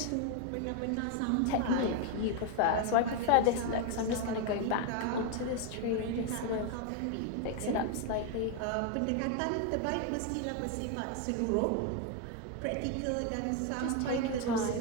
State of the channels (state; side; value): different; both; correlation 0.01